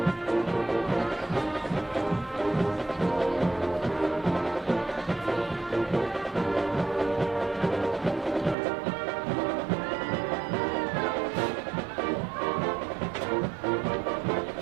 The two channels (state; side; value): drops out; left; at 8.6 s